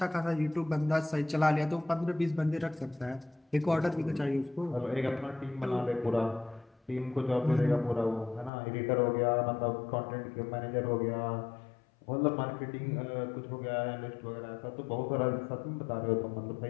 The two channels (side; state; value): right; drops out; at 8.5 s